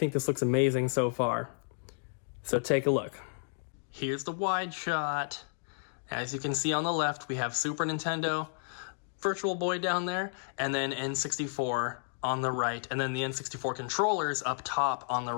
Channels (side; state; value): right; silent; digital silence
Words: this looks amazing so far. So take a look. Here's the wide shot. As you can see on the left, we have Super Nintendo, Virtual Boy down there, and then N64 on the right, and then the N64 controllers up top on the